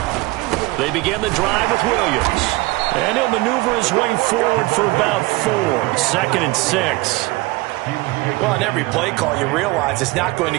They begin the drive with Williams. And he'll maneuver his way forward for about 4. 2nd and 6. Well, on every play call, you realize it's not going to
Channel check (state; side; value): quieter; left; 21.3 dB